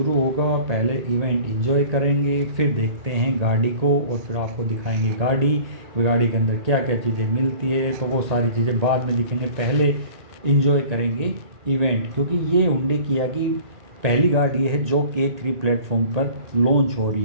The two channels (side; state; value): left; late; 1.8 ms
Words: होगा, पहले इवेंट एंजॉय करेंगे, फिर देखते हैं गाड़ी को और फिर आपको दिखाएंगे गाड़ी के अंदर क्या क्या चीज़ें मिलती है। तो वो सारी चीज़ें बाद में दिखेंगे, पहले एंजॉय करेंगे इवेंट, क्योंकि ये हुंडई किया की पहली गाड़ी है जो K3 प्लेटफॉर्म पर लॉन्च हो